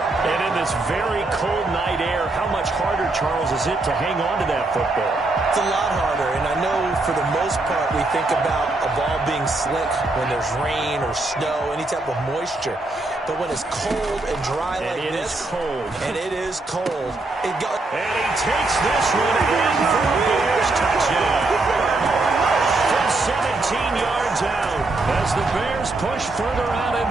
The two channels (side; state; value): left; quieter; 3.1 dB